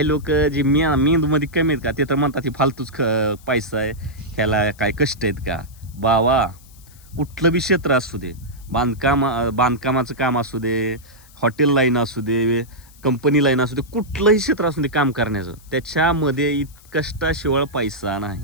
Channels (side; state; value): left; noise; hiss, 25 dB below the sound